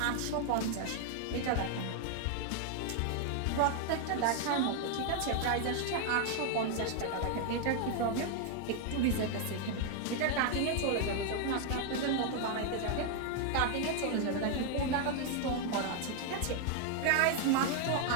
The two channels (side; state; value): both; different; correlation 0.00